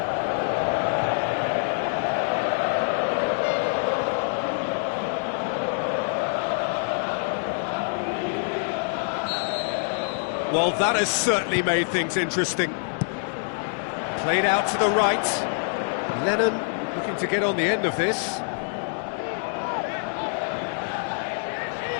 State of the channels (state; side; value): silent; right; 61 dB below the other